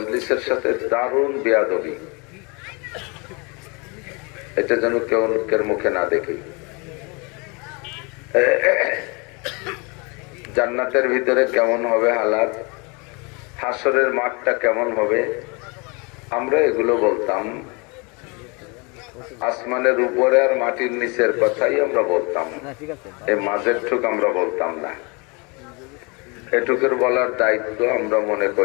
সাথে দারুণ বেয়াদবি। এটা যেন কেউ লোকের মুখে না দেখি। জান্নাতের ভিতরে কেমন হবে হালাত, হাসরের মাঠটা কেমন হবে, আমরা এগুলো বলতাম। আসমানের উপরে আর মাটির নিচের কথাই আমরা বলতাম, এই মাঝের ঠুক আমরা বলতাম না। এটুকুর বলার দায়িত্ব আমরা মনে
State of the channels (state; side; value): quieter; right; 30.1 dB